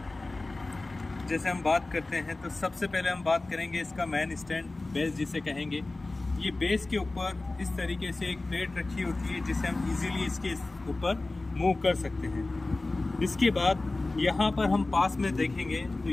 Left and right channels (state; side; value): quieter; right; 3.1 dB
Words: जैसे हम बात करते हैं तो सबसे पहले हम बात करेंगे इसका मेन स्टैंड, बेस जिसे कहेंगे। ये बेस के ऊपर इस तरीके से एक प्लेट रखी होती है जिसे हम इजीली इसके ऊपर मूव कर सकते हैं। इसके बाद यहाँ पर हम पास में देखेंगे तो